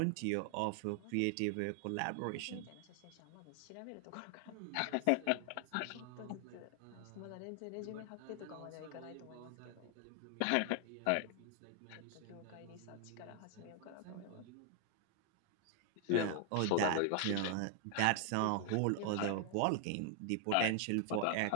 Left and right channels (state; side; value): different; both; correlation 0.00